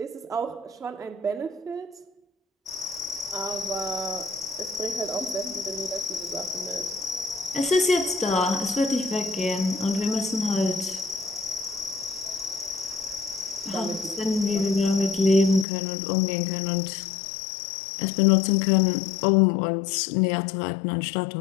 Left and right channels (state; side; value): drops out; right; at 15.7 s